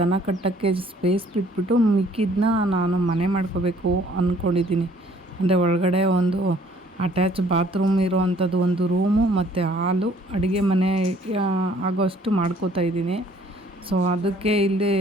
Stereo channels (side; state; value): both; normal; correlation 0.59